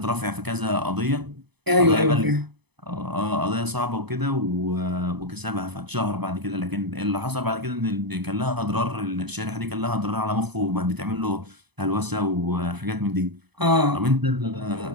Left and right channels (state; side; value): late; left; 0.99 ms